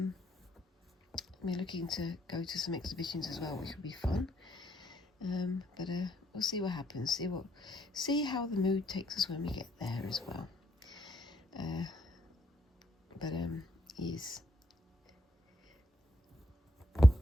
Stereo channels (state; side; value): normal; both; correlation 0.73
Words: We're looking to go to some exhibitions as well, which will be fun. But we'll see what happens. See how the mood takes us when we get there as well. But yes.